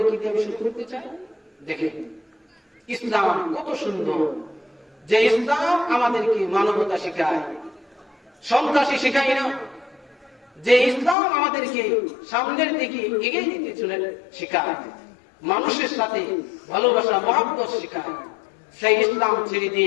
কি দিয়ে শুরু করতে চাই। দেখেন ইসলাম কত সুন্দর, যে ইসলাম আমাদেরকে মানবতা শেখায়, সন্ত্রাসী শেখায় না, যে ইসলাম আমাদেরকে সামনের দিকে এগিয়ে দিতে চলে শেখায়, মানুষের সাথে ভালোবাসা মহব্বত শেখায়। সেই ইসলাম ছেড়ে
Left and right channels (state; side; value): drops out; right; at 11.2 s